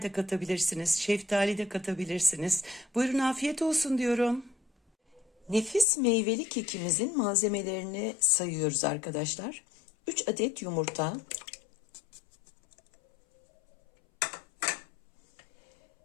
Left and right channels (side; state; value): right; drops out; at 5.9 s